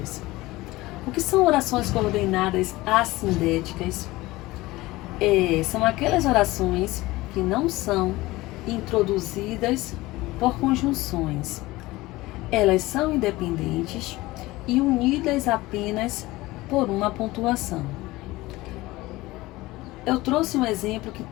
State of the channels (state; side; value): quieter; right; 19.5 dB